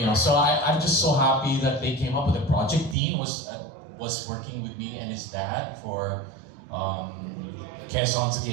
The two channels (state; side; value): drops out; left; at 3.0 s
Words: so I'm just so happy that they came up with a project. Dean was working with me and his dad for Quezon's